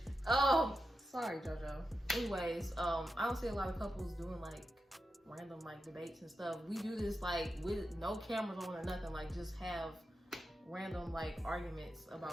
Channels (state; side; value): normal; both; correlation 0.90